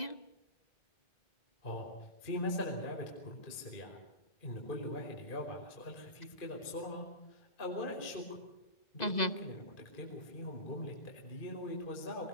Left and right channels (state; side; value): late; right; 2.0 ms